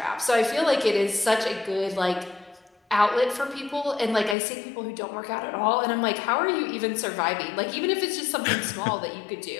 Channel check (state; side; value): drops out; right; at 4.4 s